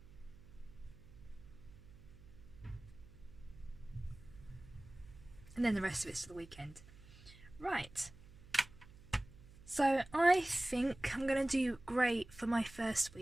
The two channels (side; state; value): right; noise; hum, 20 dB below the sound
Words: And then the rest of it's to the weekend. Right. So I think I'm going to do grey for my first